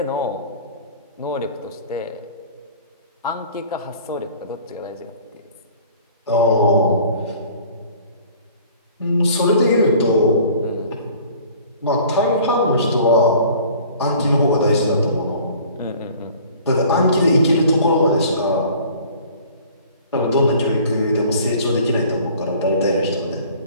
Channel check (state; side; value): inverted; both; correlation -0.49